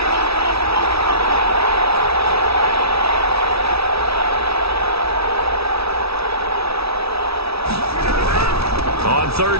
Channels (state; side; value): late; left; 0.77 ms